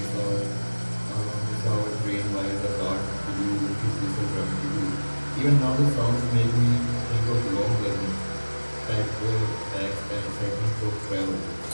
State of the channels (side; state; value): both; inverted; correlation -1.00